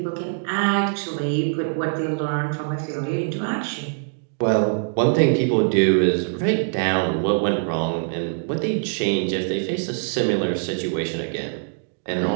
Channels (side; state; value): left; silent; digital silence